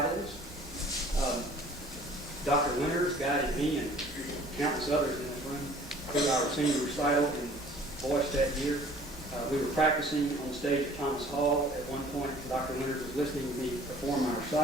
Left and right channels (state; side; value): normal; both; correlation 0.52